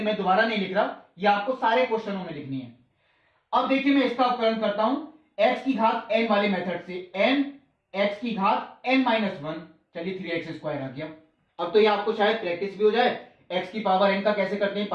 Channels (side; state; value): both; identical; correlation 1.00